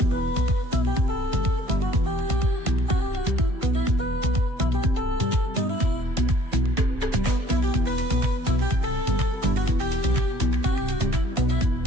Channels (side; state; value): left; late; 1.5 ms